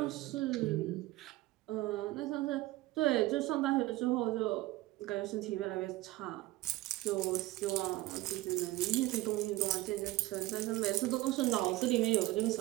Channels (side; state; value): left; quieter; 17.8 dB